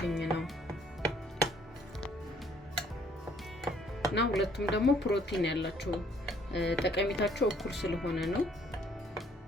ነው። እና ሁለቱም ደግሞ ፕሮቲን ያላቸው ጠቀሜታቸው እኩል ስለሆነ ነው።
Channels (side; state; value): both; normal; correlation 0.62